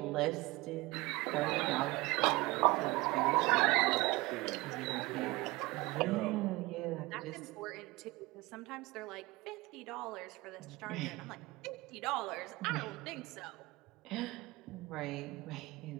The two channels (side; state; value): left; quieter; 21.8 dB